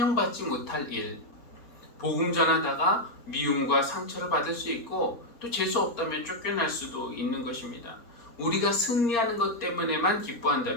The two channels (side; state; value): right; late; 4.3 ms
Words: 못할 일, 복음 전하다가 미움과 상처를 받을 수 있고 또 재수 없다면 쫓겨날 수도 있는 것입니다. 우리가 승리하는 것 때문에만